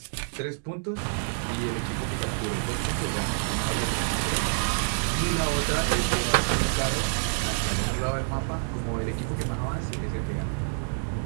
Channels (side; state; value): left; silent; 60 dB below the other